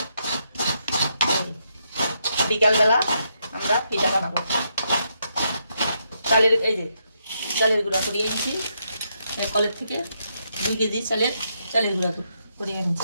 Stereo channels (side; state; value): both; inverted; correlation -0.79